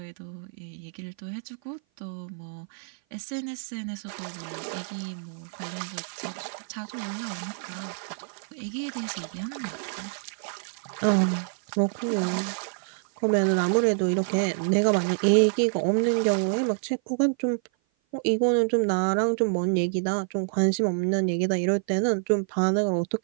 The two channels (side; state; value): left; silent; 55 dB below the other